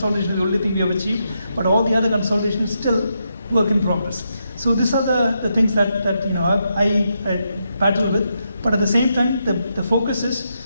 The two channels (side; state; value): both; inverted; correlation -0.82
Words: is the only thing we have achieved, but all the other consolidation is still work in progress. So these are the things that I battle with. But at the same time, the focus is